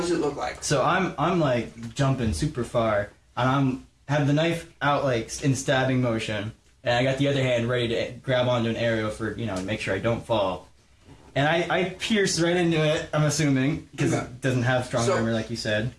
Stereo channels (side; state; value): both; identical; correlation 1.00